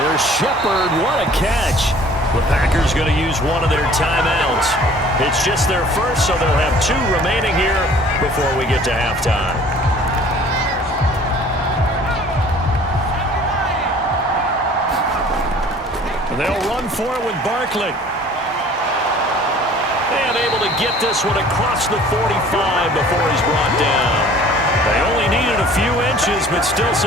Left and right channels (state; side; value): normal; both; correlation 0.51